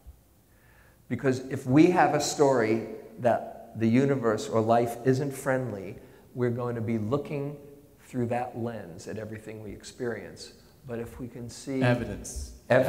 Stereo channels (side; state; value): both; identical; correlation 1.00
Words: Because if we have a story that the universe or life isn't friendly, we're going to be looking through that lens at everything we experience. But if we can see evidence,